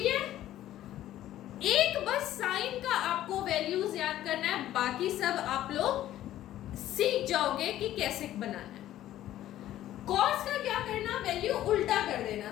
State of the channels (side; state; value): right; quieter; 13.2 dB